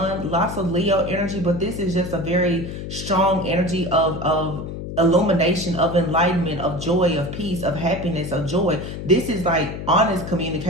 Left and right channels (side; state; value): left; noise; hum, 8 dB below the sound